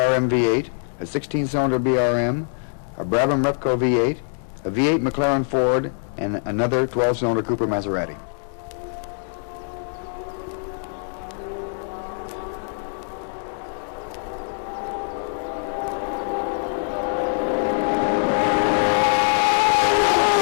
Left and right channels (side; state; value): right; silent; 63 dB below the other